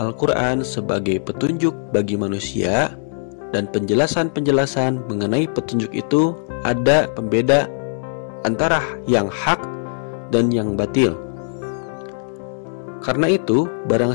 sebagai petunjuk bagi manusia, dan penjelasan-penjelasan mengenai petunjuk itu ada pembeda antara yang hak dan yang batil. Karena itu,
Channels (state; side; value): silent; right; digital silence